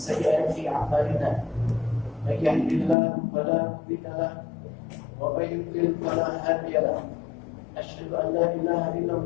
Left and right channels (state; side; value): drops out; right; at 3.0 s